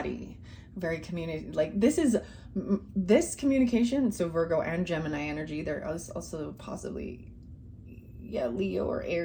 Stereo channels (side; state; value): both; identical; correlation 1.00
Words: very like this communication. So Virgo and Gemini energy. There is also possibly, Leo or